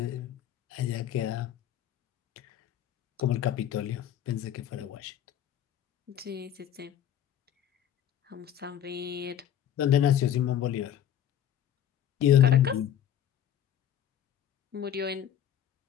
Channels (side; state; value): right; quieter; 10.3 dB